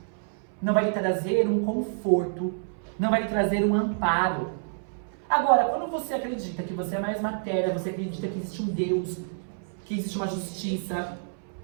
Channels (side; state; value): left; silent; 59 dB below the other